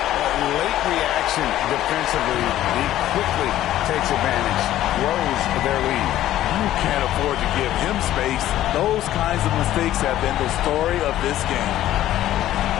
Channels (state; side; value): quieter; right; 13.4 dB